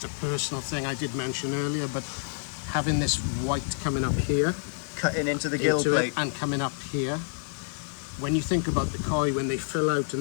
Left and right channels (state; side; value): silent; right; 59 dB below the other